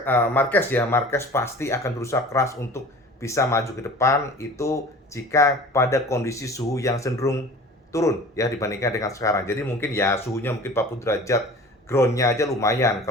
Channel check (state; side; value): normal; both; correlation 0.42